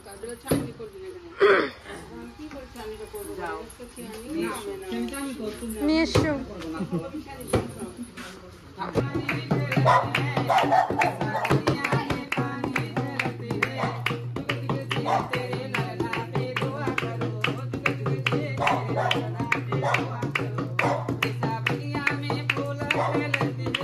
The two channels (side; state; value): both; identical; correlation 1.00